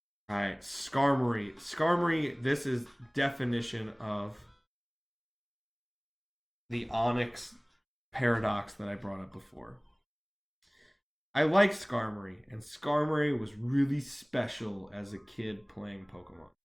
Alright, Skarmory. Skarmory, this is definition of the Onyx paradox that I brought up before. I like Skarmory, and Skarmory was really special as a kid playing Pokemon.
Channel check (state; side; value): identical; both; correlation 1.00